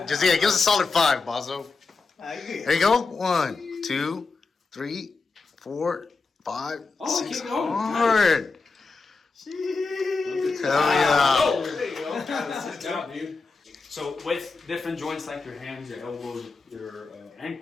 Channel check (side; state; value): right; quieter; 4.2 dB